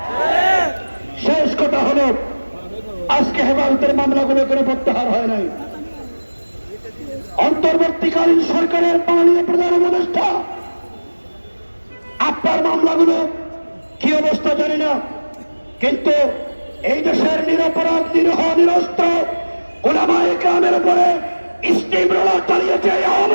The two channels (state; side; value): inverted; both; correlation -1.00